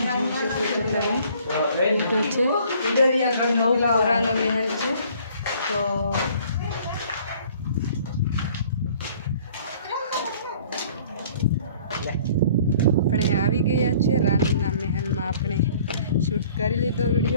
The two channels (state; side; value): inverted; both; correlation -0.55